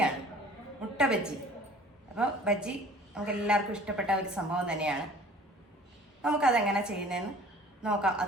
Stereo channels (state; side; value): normal; both; correlation 0.49